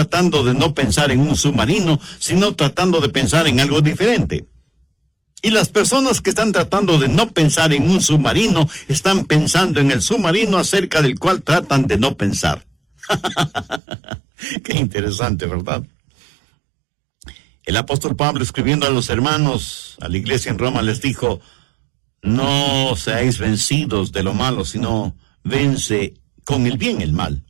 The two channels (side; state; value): left; drops out; at 13.8 s